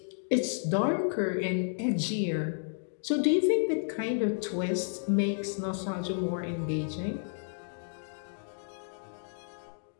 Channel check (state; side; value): silent; right; digital silence